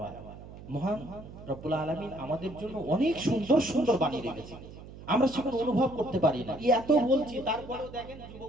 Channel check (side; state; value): right; noise; hum, 15 dB below the sound